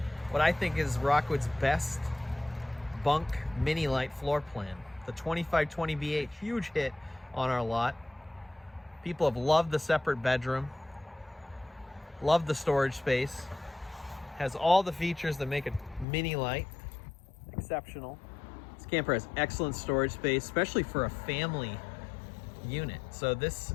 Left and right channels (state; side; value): drops out; right; at 16.1 s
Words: What I think is Rockwood's best bunk mini Lite floor plan. The 2520BH, huge hit on our lot. People have loved the separate bedroom, loved the storage space. Has all the features that make a mini Lite exceptional. This camper has excellent storage space, especially for a family unit. So this